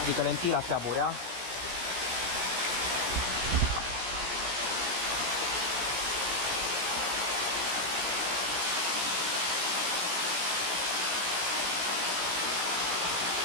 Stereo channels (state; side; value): late; left; 17 ms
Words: lentila se aburea.